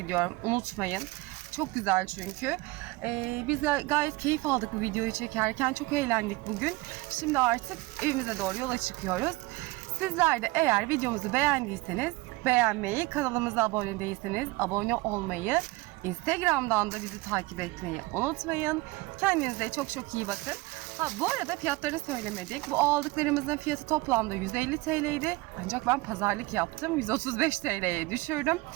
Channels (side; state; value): left; quieter; 21.6 dB